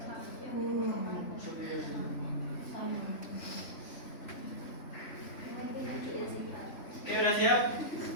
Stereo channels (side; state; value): right; late; 3.5 ms